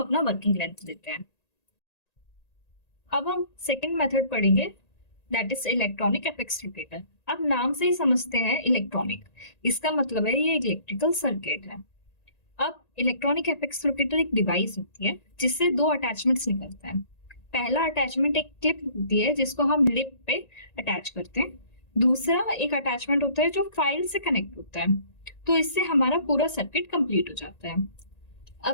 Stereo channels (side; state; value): right; late; 1.9 ms